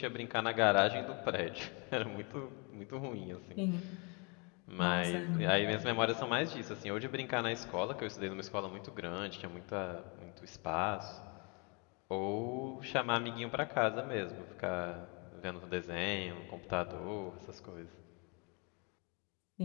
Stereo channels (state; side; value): quieter; right; 32.7 dB